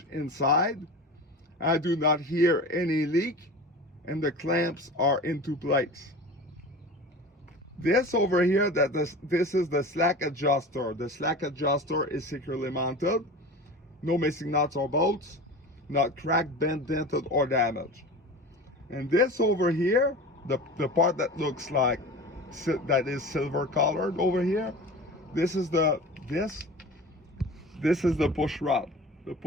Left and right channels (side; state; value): both; normal; correlation 0.34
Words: inside. I do not hear any leak, and the clamps are into place. This over here, this is the slack adjuster. The slack adjuster is securely mounted, no missing nuts or bolts, not cracked, bent, dented, or damaged. And this over here, the part that looks like that is silver colored over here, this is the push rod. The